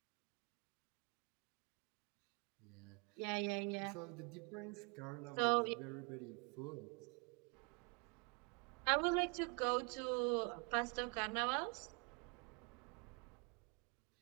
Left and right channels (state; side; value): quieter; left; 34.4 dB